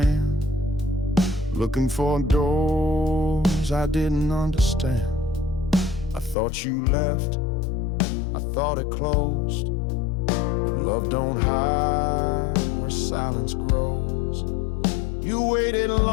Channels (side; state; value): right; drops out; at 6.4 s